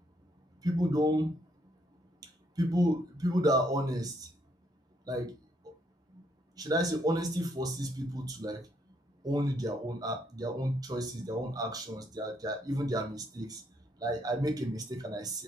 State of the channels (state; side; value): normal; both; correlation 0.72